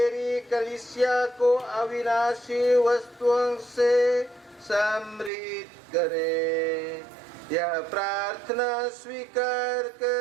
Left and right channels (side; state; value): left; drops out; at 5.3 s